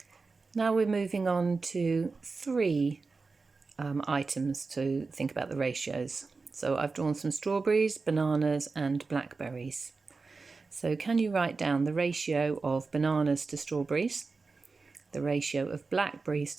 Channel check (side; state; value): left; quieter; 4.2 dB